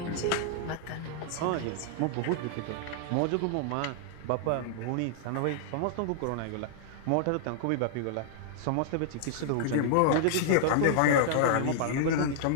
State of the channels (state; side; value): different; both; correlation -0.01